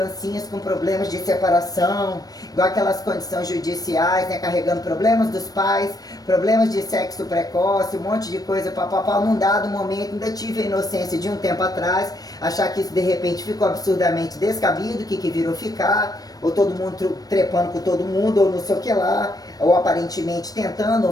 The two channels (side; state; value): right; late; 0.18 ms